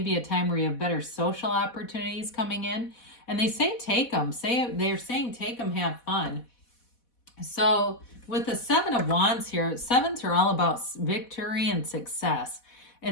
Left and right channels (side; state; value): right; late; 4.1 ms